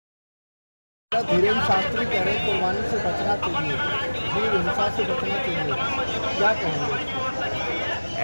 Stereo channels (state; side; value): inverted; both; correlation -1.00